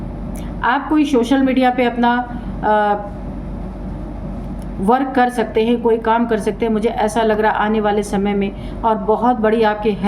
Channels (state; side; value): identical; both; correlation 1.00